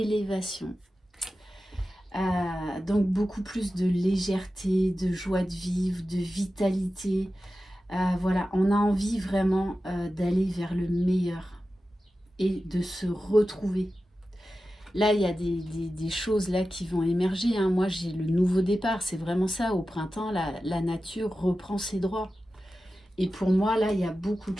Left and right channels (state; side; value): normal; both; correlation 0.93